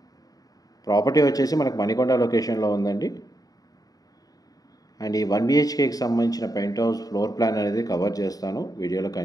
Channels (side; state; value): right; late; 0.18 ms